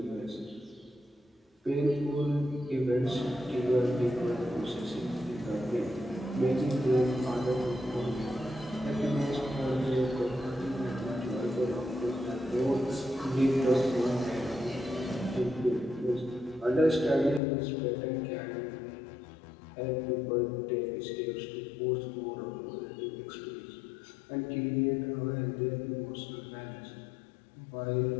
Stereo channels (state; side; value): drops out; right; at 17.4 s